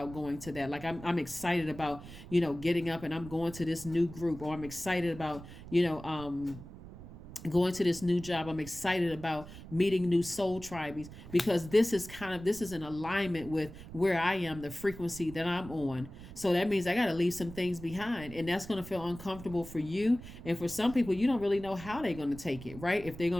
going to that. Like I'm excited about, getting up and I'm going to this new group, or I'm excited about, going to this new job. I'm excited about meeting new soul tribes, because this is in alignment with where I am, the frequency that I'm on. So that means I got to leave some things behind, and that's going to feel uncomfortable for you. And for some people, you don't really know how they're going to take it, right? If they're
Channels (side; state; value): right; noise; rumble, 14 dB below the sound